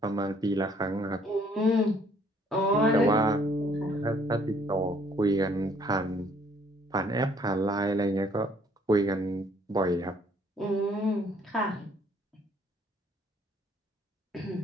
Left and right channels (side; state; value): both; normal; correlation 0.62